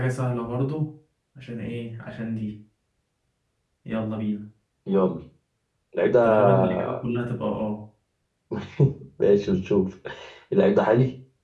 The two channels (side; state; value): both; identical; correlation 1.00